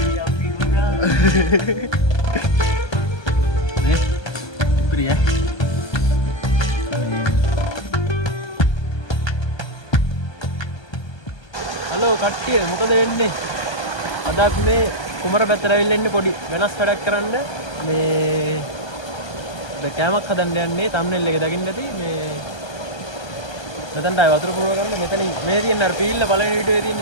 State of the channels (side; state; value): right; late; 1.3 ms